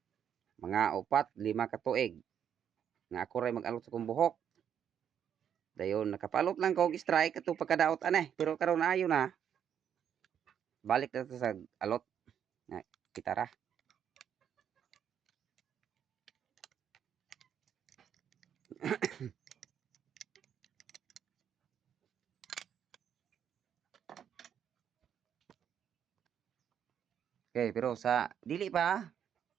Mga 4-5 ka tuig. Nga ako ray mag-alot sa kong buhok. Dayon nakapalot lang ko og strike ato pagkadaot aneh, pero karon ayo na. Balik na sa alot nga kitara. Okay, pero sa dili pa.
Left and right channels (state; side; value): quieter; left; 8.7 dB